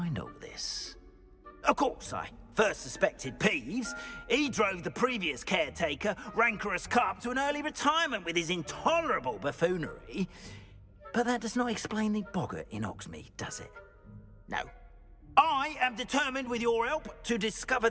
all this. Of course, I first suspected Peeves. He drove the previous caretaker, Rancorous Carp, to an early retirement with his intolerable buffoonery. But that does not explain the boggart in Hogsmeade, does it? No. I am determined, with your help, to discover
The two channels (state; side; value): identical; both; correlation 1.00